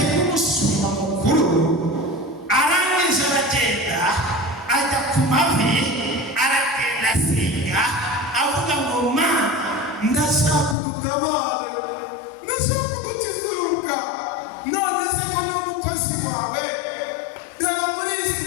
nk'umushumba mukuru arangije aragenda ajya ku mavi, aragenda asenga avuga ngo Mana, ndashaka udutabare, ndashaka udukizuruka, none se ko n'umukozi wawe reba muri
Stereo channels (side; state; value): right; drops out; at 10.8 s